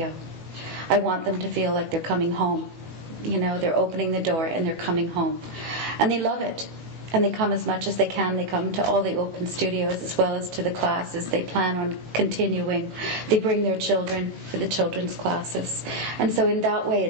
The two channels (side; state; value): left; late; 18 ms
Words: I want them to feel like they're coming home. You know, they're opening the door and they're coming home. And they love it. And they come as much as they can. They come to all the open studios as well as to the classes. They plan on continuing. They bring their children for the children's classes. And so in that way,